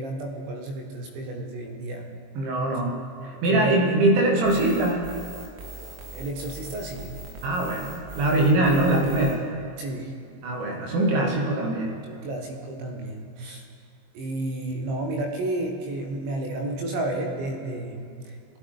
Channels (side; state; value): left; late; 22 ms